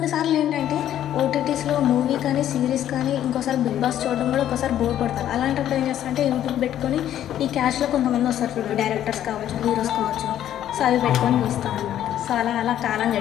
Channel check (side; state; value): right; quieter; 11.4 dB